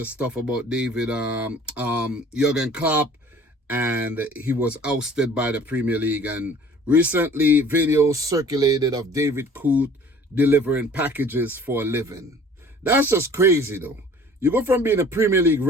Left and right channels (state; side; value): normal; both; correlation 0.50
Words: stuff about Jurgen Klopp, and he was ousted by the Premier League. And recently, videos circulated of David Coote delivering packages for a living. That's just crazy, though. You go from being a Premier League